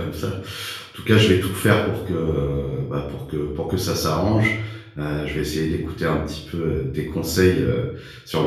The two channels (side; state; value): both; identical; correlation 1.00